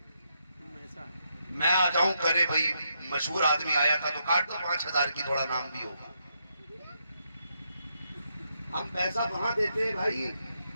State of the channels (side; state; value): both; inverted; correlation -0.80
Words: میں آ جاؤں کرے بھائی مشہور آدمی آیا تھا تو کاٹ دو 5000 کی، تھوڑا نام بھی ہوگا۔ ہم پیسہ وہاں دیتے ہیں بھائی